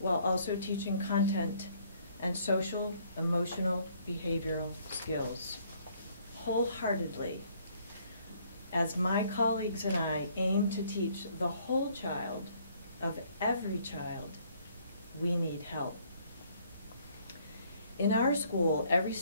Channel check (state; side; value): inverted; both; correlation -0.63